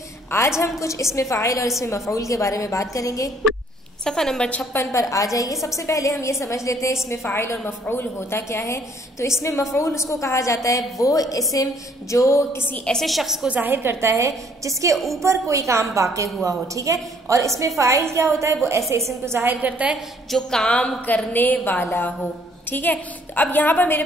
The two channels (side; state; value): both; normal; correlation 0.62